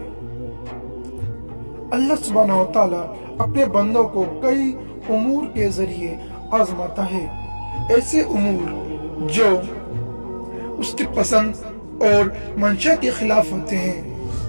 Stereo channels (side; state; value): both; inverted; correlation -1.00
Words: اللہ سبحانہ و تعالیٰ اپنے بندوں کو کئی امور کے ذریعے آزماتا ہے، ایسے امور جو اس کی پسند اور منشا کے خلاف ہوتے ہیں،